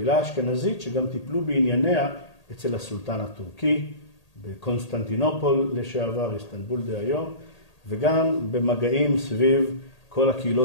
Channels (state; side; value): late; right; 1.8 ms